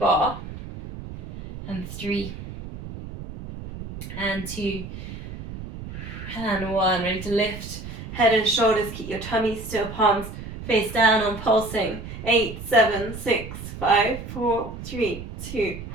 and 3, and 2, and 1. Ready to lift head and shoulders. Keep your tummy still. Palms face down on pulsing. 8, 7, 6, 5, 4, 3, 2,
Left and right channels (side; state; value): right; noise; rumble, 10 dB below the sound